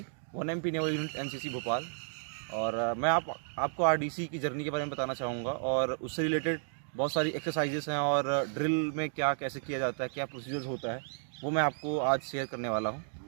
1MP naval unit NCC Bhopal. और मैं आपको आरडीसी की जर्नी के बारे में बताना चाहूँगा और उससे रिलेटेड बहुत सारी एक्सरसाइजेस हैं और ड्रिल में क्या कैसे किया जाता है, क्या प्रोसीजर्स होता है, वो मैं आपको आज शेयर करने वाला हूँ।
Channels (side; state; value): left; silent; digital silence